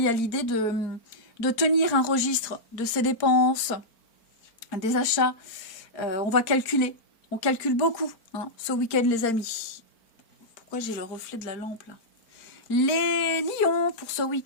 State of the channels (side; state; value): right; late; 4.4 ms